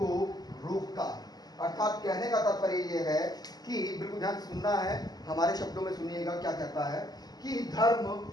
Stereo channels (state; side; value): late; right; 0.19 ms